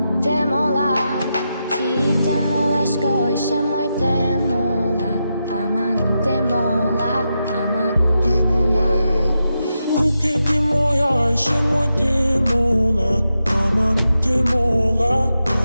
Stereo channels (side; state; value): both; inverted; correlation -0.87